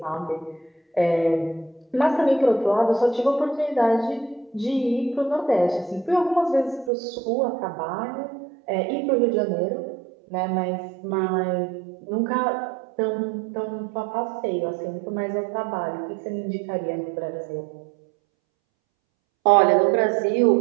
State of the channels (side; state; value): left; drops out; at 6.9 s